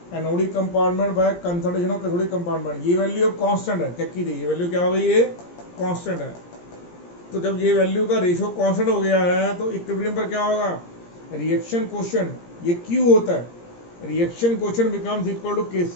anodic compartment by concentration of cathodic compartment, ये वैल्यू अब कांस्टेंट है, चेक कीजिए ये वैल्यू क्या हो गई, ये कांस्टेंट है। तो जब ये वैल्यू का रेशियो कांस्टेंट हो गया है तो इक्विलिब्रियम पर क्या होगा, रिएक्शन कोएफिशिएंट ये Q होता है, reaction coefficient becomes equal to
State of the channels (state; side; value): late; right; 17 ms